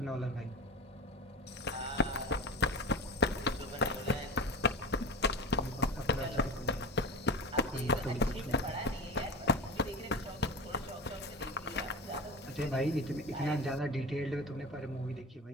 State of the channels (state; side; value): normal; both; correlation 0.29